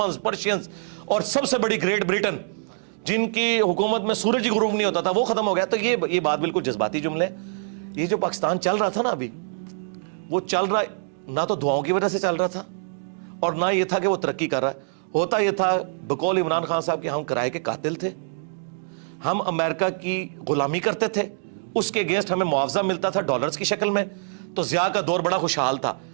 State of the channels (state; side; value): silent; left; digital silence